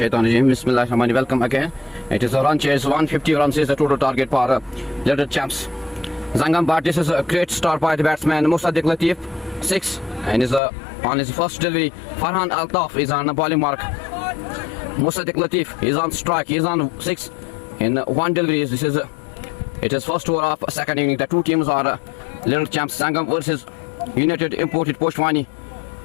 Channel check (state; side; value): drops out; right; at 10.6 s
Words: shaitanir rajim. Bismillahirrahmanirrahim. Welcome again. It is a run chase. 150 runs is the total target for Little Champs. Zangam, but this is a great start by the batsman Musaddiq Latif, 6, and is on his first delivery. Farhan Altaf is on the bowling mark. Musaddiq Latif is on strike. He is on 6 in one delivery. It is first over of second inning. The two teams are Little Champs Zangam versus United Imported Poshwani.